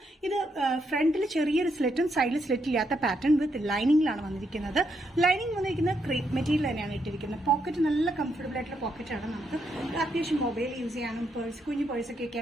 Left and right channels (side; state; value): both; normal; correlation 0.78